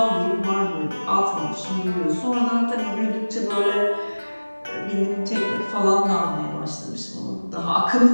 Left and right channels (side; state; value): both; inverted; correlation -1.00